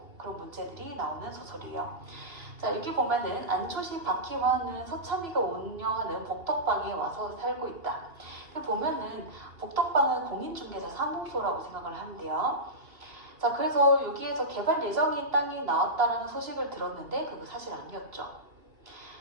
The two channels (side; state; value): left; late; 2.8 ms